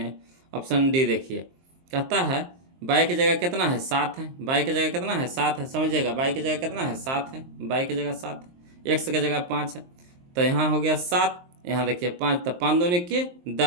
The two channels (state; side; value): late; left; 23 ms